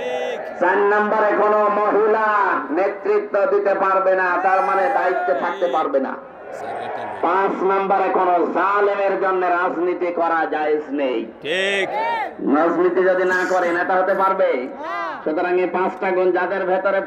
4 নম্বরে কোন মহিলা নেতৃত্ব দিতে পারবে না, তার মানে দায়িত্বে থাকতে পারবে না। 5 নম্বরে কোন জালেমের জন্য রাজনীতি করা জায়েজ নেই। ঠিক, রাজনীতি যদি না করে নেতা হতে পারবে? সুতরাং এই 5টা গুণ যাদের ভেতরে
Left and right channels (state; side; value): identical; both; correlation 1.00